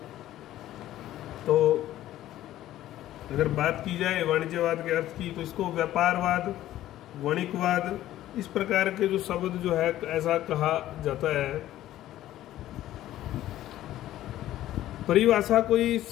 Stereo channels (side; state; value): right; quieter; 13.7 dB